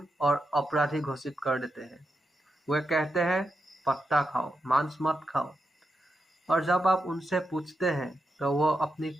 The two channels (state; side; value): normal; both; correlation 0.87